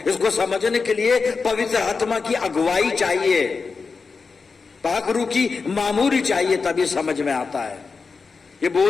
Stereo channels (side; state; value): right; quieter; 4.7 dB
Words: इसको समझने के लिए पवित्र आत्मा की अगुवाई चाहिए, पाक रूह की मामूरी चाहिए, तभी समझ में आता है। ये